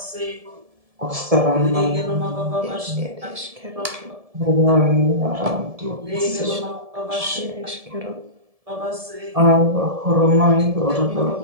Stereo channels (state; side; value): late; left; 1.7 ms